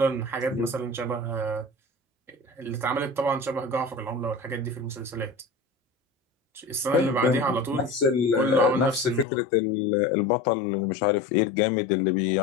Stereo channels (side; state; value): right; drops out; at 9.2 s